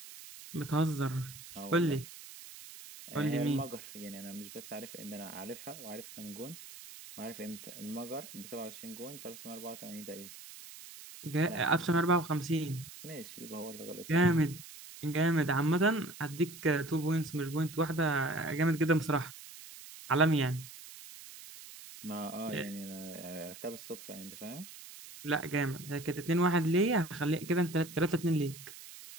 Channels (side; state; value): right; noise; hiss, 15 dB below the sound